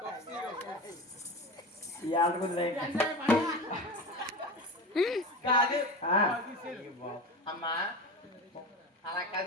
ఈ ఆటకుంది కాదు అమ్మా అలా కాదు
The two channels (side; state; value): both; normal; correlation 0.27